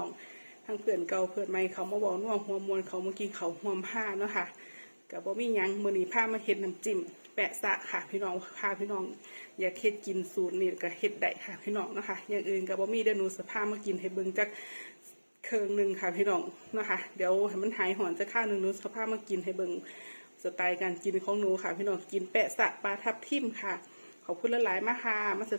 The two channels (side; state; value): both; inverted; correlation -1.00